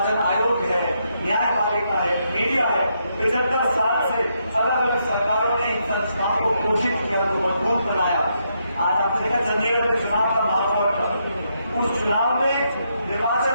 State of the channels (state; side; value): inverted; both; correlation -0.78